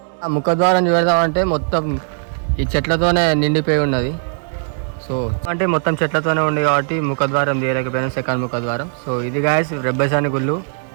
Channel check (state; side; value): silent; left; 67 dB below the other